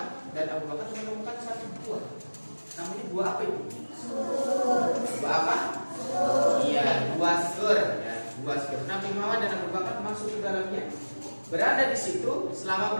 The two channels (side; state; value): both; inverted; correlation -1.00